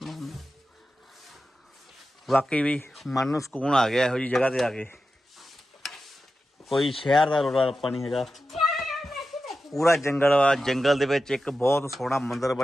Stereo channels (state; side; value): normal; both; correlation 0.92